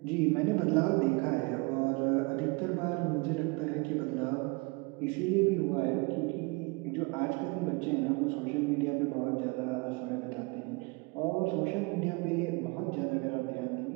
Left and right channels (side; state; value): left; quieter; 28.4 dB